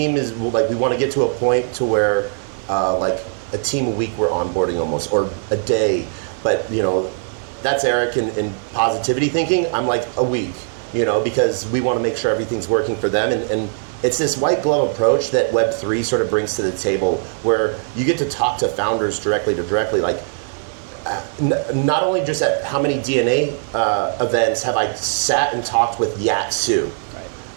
is like, we want to get to a point to where like a team a week we're onboarding almost, or a day. But that's Eric in positivity thinking. I'm like a week, because we want to make sure everything's working for them. And it's this white glove approach that Web3 sort of brings to the table, where you get to talk to founders directly to directly. Like, not only just at how many DNA events have I sat and talked with Yatsu,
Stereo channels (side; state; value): left; silent; digital silence